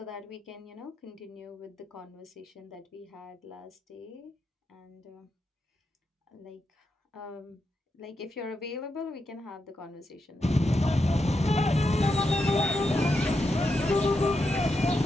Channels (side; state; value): both; normal; correlation 0.85